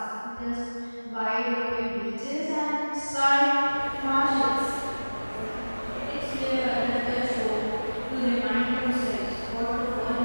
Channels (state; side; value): inverted; both; correlation -1.00